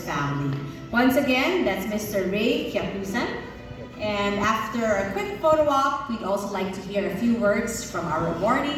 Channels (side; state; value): both; identical; correlation 1.00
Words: family. Once again, that's Mr. Ray Kyakusan. And after a quick photo op, we'd also like to hear a few words from our